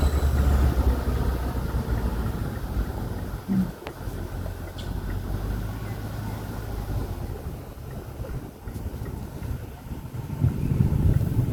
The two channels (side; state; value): both; identical; correlation 1.00